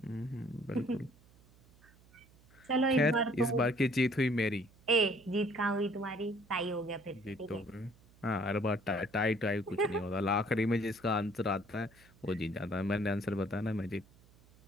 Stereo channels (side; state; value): right; noise; hum, 27 dB below the sound